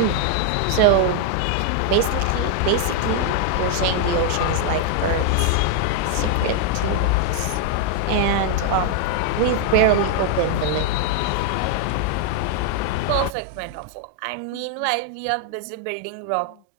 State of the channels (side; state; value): both; different; correlation 0.00